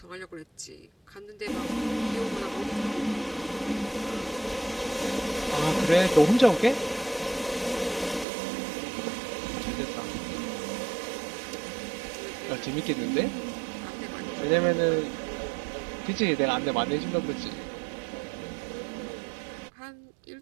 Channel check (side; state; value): left; drops out; at 8.2 s